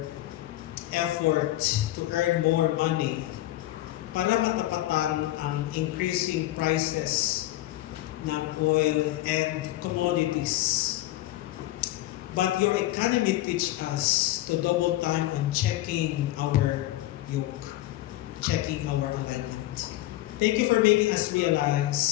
effort to earn more money para matapatan ang increasing prices ng oil and commodities. But your economy teach us to double time on checking our yoke, checking our alignment. Thank you for making us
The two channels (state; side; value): quieter; right; 16.1 dB